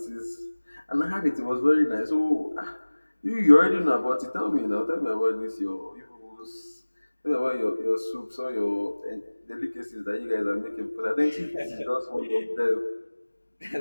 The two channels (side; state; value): both; inverted; correlation -1.00